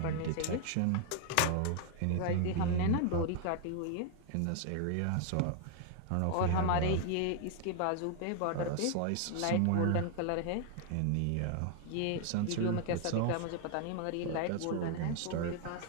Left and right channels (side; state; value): both; different; correlation 0.00